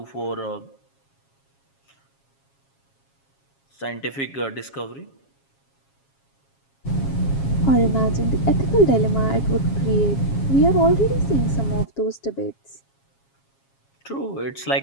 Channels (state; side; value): late; right; 7.3 ms